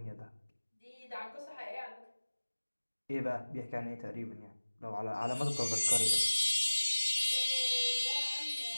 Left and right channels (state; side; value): inverted; both; correlation -1.00